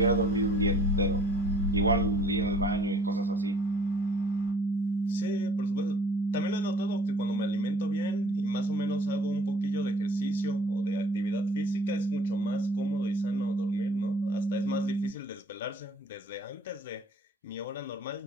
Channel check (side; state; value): both; normal; correlation 0.54